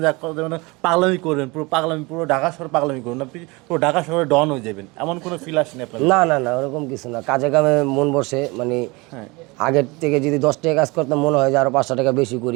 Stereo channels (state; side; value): quieter; left; 25.2 dB